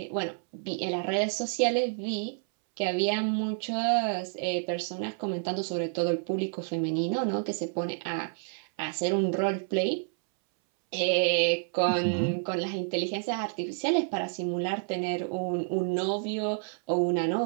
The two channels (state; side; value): silent; left; 58 dB below the other